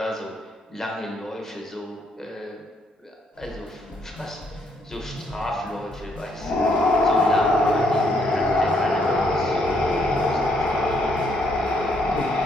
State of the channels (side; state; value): both; normal; correlation 0.72